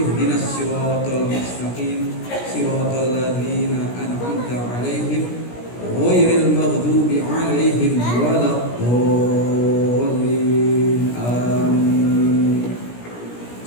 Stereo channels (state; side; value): late; right; 17 ms